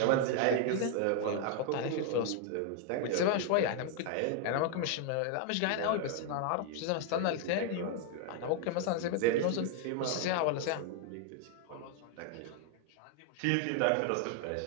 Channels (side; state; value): both; different; correlation 0.00